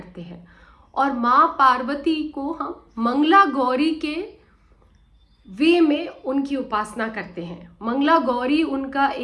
हैं और माँ पार्वती को हम मंगला गौरी के वे में उनकी उपासना करते हैं। मंगला गौरी उनका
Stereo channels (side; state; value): both; identical; correlation 1.00